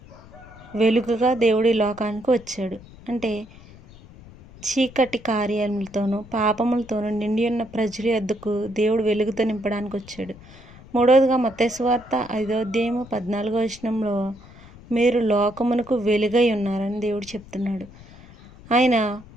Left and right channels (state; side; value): noise; left; rumble, 20 dB below the sound